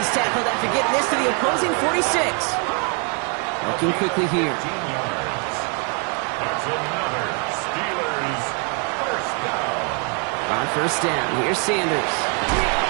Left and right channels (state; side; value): quieter; left; 38.3 dB